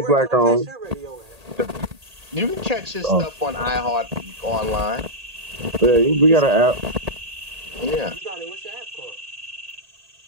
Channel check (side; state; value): left; late; 1.8 ms